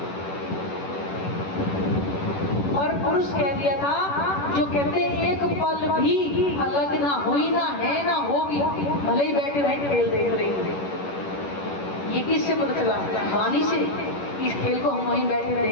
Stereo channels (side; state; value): right; late; 11 ms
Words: और पुरुष कह दिया था, जो कहते एक पल भी अलग ना हुई, ना है ना होगी, भले ही बैठे बैठे खेल देख रही। ये किससे पता चला? वाणी से। इस खेल को हम वहीं बैठे